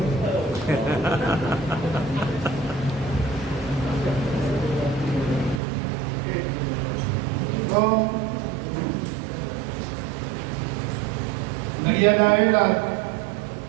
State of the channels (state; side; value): drops out; left; at 5.6 s